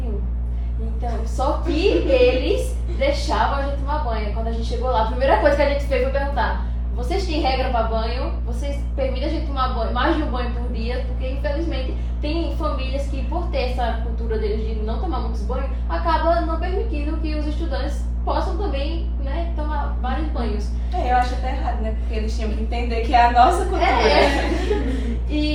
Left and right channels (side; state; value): both; identical; correlation 1.00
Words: Então, só que eles deixavam a gente tomar banho. Quando a gente chegou lá, a primeira coisa que a gente fez foi perguntar: vocês têm regra para banho? Vocês permitem a gente tomar banho, mais de um banho por dia? Porque, infelizmente, tem famílias que, por ter essa cultura deles de não tomar muitos banhos, acaba não permitindo que os estudantes possam também, né, tomar vários banhos. Eu acho até errado, né? Porque eles tinham que entender que é a nossa cultura.